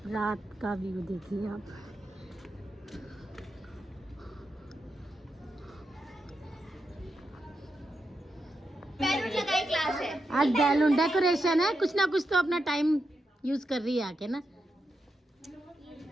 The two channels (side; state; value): both; normal; correlation 0.86